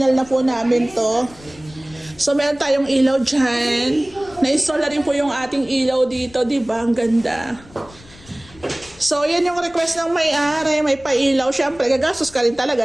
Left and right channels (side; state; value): left; noise; rumble, 23 dB below the sound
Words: na po namin to. So, meron tayong ilaw dyan. Na-install na rin po yung ating ilaw dito. Diba? Ang ganda. So, yan yung request ng may-ari. May pailaw. Siyempre, gagastos ka rin